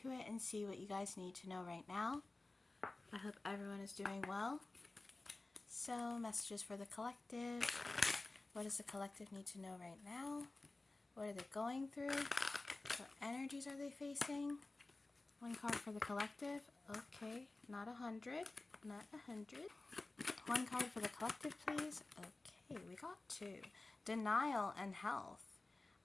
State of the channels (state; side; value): quieter; right; 3.1 dB